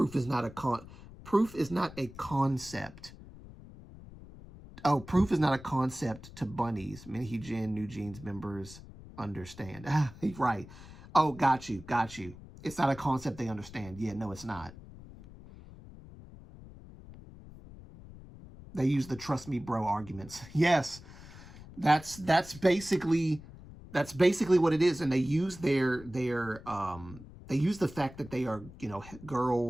is not a concept. Oh, proof is not a concept to bunnies. Min Hee Jin, New Jeans members understand. Right. Oh, got you. It's not a concept they understand. Yeah, no, it's not. They use the trust me bro arguments. Yes. That's basically what it is. And they use they use the fact that they are,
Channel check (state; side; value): noise; left; rumble, 17 dB below the sound